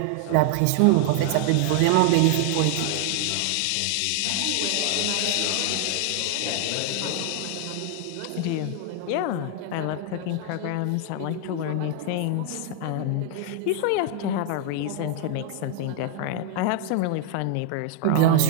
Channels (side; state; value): both; different; correlation 0.00